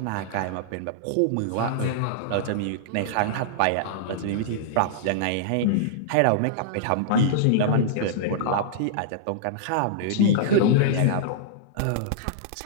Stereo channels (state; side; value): different; both; correlation -0.02